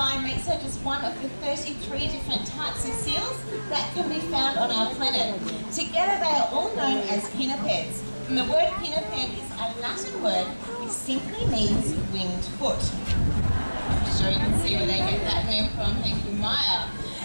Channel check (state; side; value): inverted; both; correlation -1.00